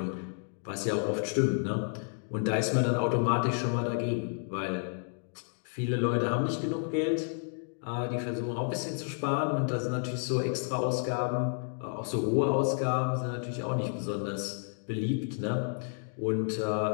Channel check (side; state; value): right; silent; 57 dB below the other